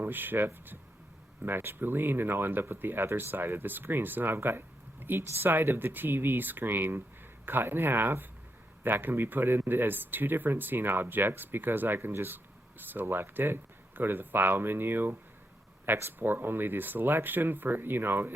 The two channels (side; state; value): both; normal; correlation 0.82